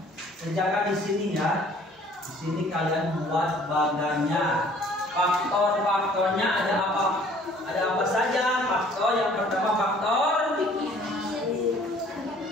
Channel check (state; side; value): normal; both; correlation 0.55